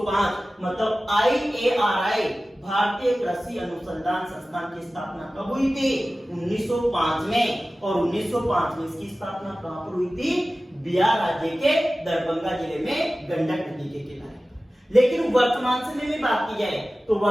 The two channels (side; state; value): both; normal; correlation 0.96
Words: मतलब IARI भारतीय कृषि अनुसंधान संस्थान की स्थापना कब हुई थी? 1905 में। और 1905 में इसकी स्थापना कहां पर हुई थी? बिहार राज्य के दरभंगा जिले में गंडक नदी के किनारे। लेकिन वर्तमान समय में बात की जाए तो